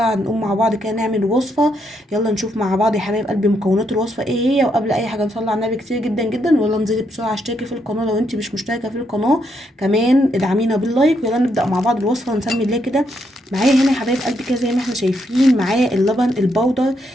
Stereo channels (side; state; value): both; normal; correlation 0.77